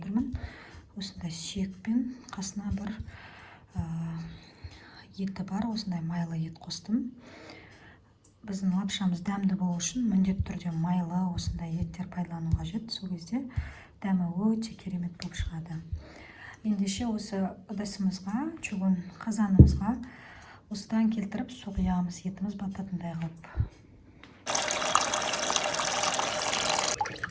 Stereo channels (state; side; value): identical; both; correlation 1.00